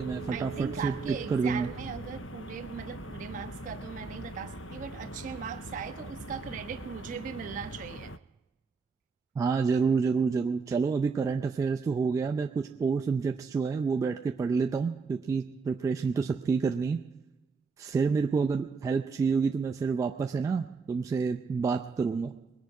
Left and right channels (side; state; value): left; quieter; 4.9 dB